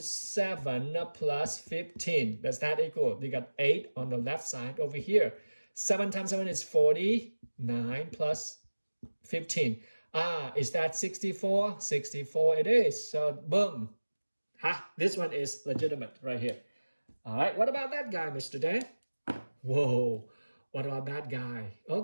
7 plus 15. Does that equal? You got 8 on the left side over here. 7 times 7 is 40. 9 plus 15. Is that 64? 64 it is. So boom. This one is legitimate right here. All right, what about that guy, Mr. Dan? Whoa, what about that guy?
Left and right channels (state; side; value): inverted; both; correlation -1.00